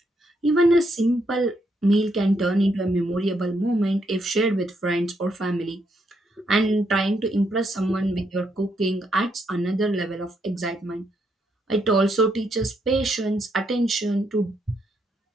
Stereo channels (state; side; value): normal; both; correlation 0.77